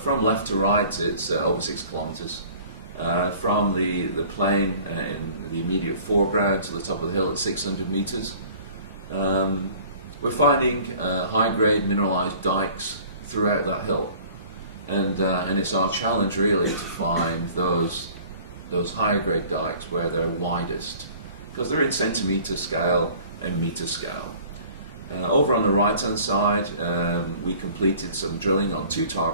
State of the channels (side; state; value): both; inverted; correlation -0.49